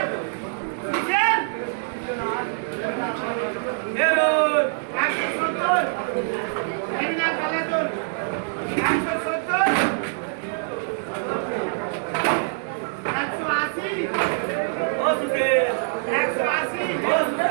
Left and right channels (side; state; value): left; silent; 62 dB below the other